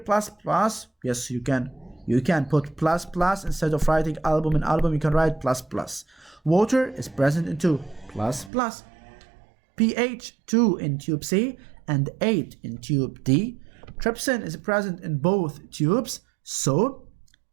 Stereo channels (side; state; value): left; drops out; at 8.5 s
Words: plus? Yes, you can. You can put plus plus instead of writing albumin, you can write plus plus. Water is present in 2, plus plus. pH 2 in tube C and 8 in tube D. Trypsin is present in both tubes, so